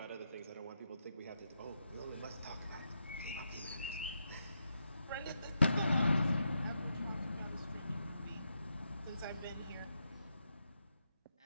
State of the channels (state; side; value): inverted; both; correlation -0.83